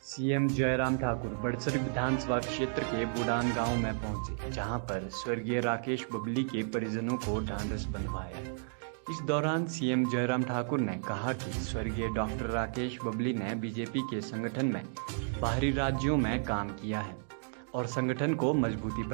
CM Jairam Thakur Badsar विधानसभा क्षेत्र के बुडान गांव में पहुंचे, जहां पर स्वर्गीय राकेश बबली के परिजनों को ढांढस बंधवाया। इस दौरान सीएम जयराम ठाकुर ने कहा कि स्वर्गीय डॉक्टर राकेश बबली ने बीजेपी के संगठन में बाहरी राज्यों में काम किया है और संगठन को मजबूती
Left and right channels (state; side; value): silent; left; digital silence